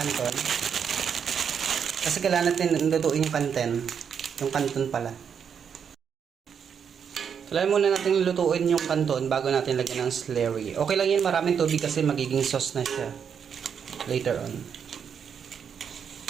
Kasi kailangan natin lutuin yung kanten. Yung canton pala. Kailangan muna natin lutuin yung canton bago natin lagyan ng slurry. Okay lang yan. Maraming tubig kasi magiging sauce na siya. Later on.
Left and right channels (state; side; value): quieter; left; 7.3 dB